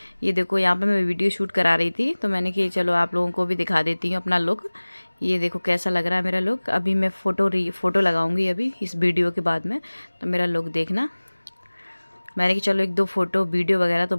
ये देखो। यहाँ पे मैं वीडियो शूट करा रही थी तो मैंने कि चलो आप लोगों को भी दिखा देती हूँ अपना लुक। ये देखो कैसा लग रहा है मेरा लुक। अभी मैं फ़ोटो लगाऊंगी अभी इस वीडियो के बाद में, तो मेरा लुक देखना। मैंने कि चलो एक दो फ़ोटो वीडियो वगैरह तो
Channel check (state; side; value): inverted; both; correlation -1.00